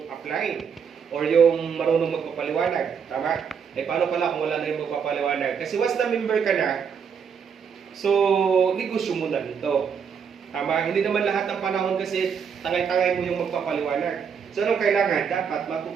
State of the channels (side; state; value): left; quieter; 6.8 dB